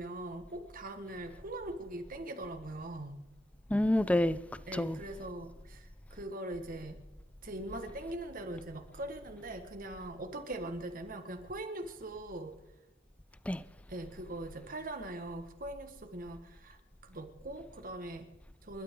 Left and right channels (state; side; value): normal; both; correlation 0.74